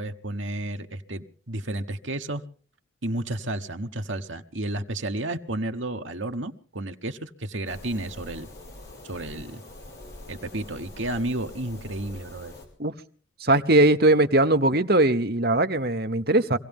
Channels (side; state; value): both; normal; correlation 0.14